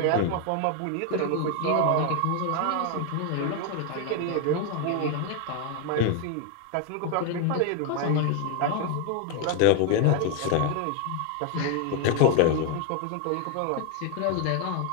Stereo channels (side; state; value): both; different; correlation 0.01